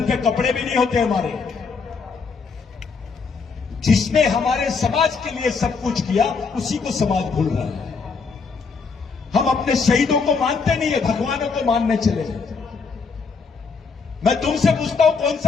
पे कपड़े भी नहीं होते हमारे। जिसने हमारे समाज के लिए सब कुछ किया उसी को समाज भूल रहा है। हम अपने शहीदों को मानते नहीं है, भगवानों को मानने चले। मैं तुमसे पूछता हूं, कौन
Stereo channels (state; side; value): quieter; right; 5.0 dB